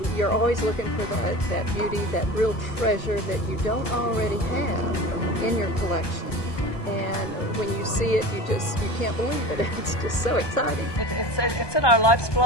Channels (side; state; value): right; late; 1.1 ms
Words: You're always looking for that beauty, that real treasure that you don't already have in your collection. And when you see it, you can't believe it. It's just so exciting. It's in our life's